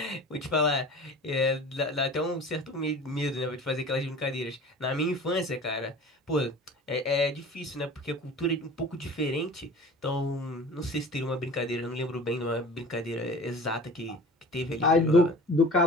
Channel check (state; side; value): normal; both; correlation 0.41